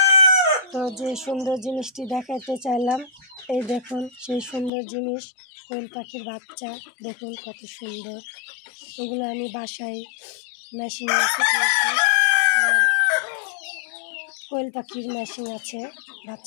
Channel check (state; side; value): drops out; right; at 4.7 s